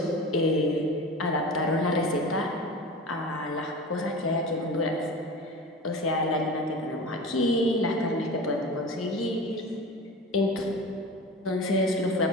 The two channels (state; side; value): normal; both; correlation 0.32